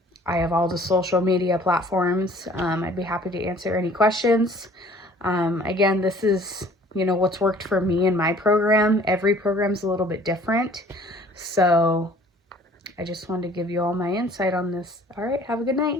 I have all the social media platforms. I'd be happy to answer any questions. Again, this is, what's worked for me in my program. Every program's a little bit different. So I just wanted to give you all my insight on this. All right, have a good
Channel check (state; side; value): normal; both; correlation 0.53